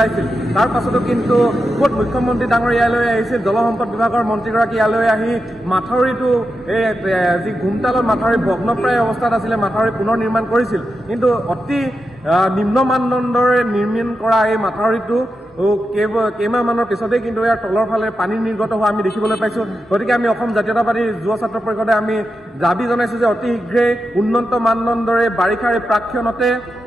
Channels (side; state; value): both; normal; correlation 0.88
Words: তাৰ পাছতো কিন্তু ক'ত মুখ্যমন্ত্ৰী ডাঙৰ ইয়ালৈ আহিছিল, জলসম্পদ বিভাগৰ মন্ত্ৰীগৰাকী ইয়ালৈ আহি মাথাউৰিটো এই যি ঘুমতালত মাথাউৰি ভগ্নপ্ৰায় অৱস্থাত আছিলে মাথাউৰি পুনৰ নিৰ্মাণ কৰিছিল, কিন্তু অতি নিম্ন মানদণ্ডৰে নিৰ্মাণ কৰা এই মাথাউৰিটো কেইমাহমানৰ পিছতেই কিন্তু ইয়াৰ তলৰ ফালে পানী নিৰ্গত হোৱা আমি দেখিবলৈ পাইছোঁ। গতিকে আমি অসম জাতীয়তাবাদী যুৱ ছাত্ৰ পৰিষদে আমি দাবী জনাইছোঁ যে অতি শীঘ্ৰেই উন্নত মানদণ্ডৰে বাৰিষাৰ প্ৰাক্ষণতে